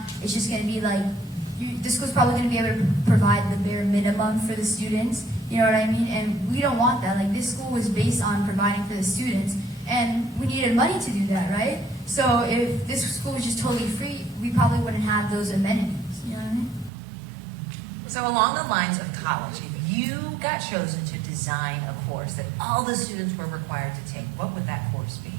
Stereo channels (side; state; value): left; drops out; at 16.9 s